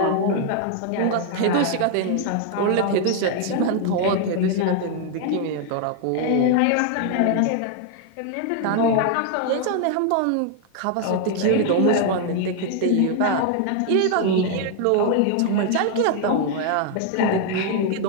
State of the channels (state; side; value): different; both; correlation 0.00